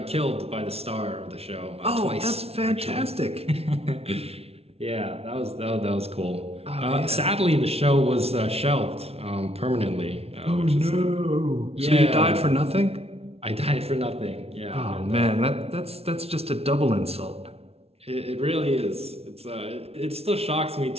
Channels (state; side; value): late; left; 0.30 ms